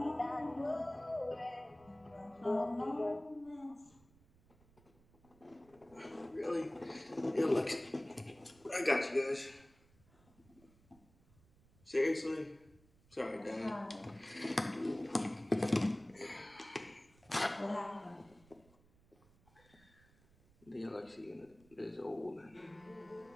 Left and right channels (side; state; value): right; noise; rumble, 28 dB below the sound